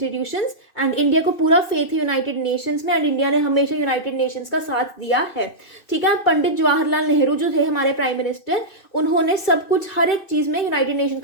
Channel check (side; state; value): right; late; 2.6 ms